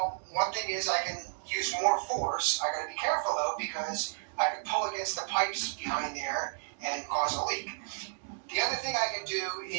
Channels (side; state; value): left; silent; digital silence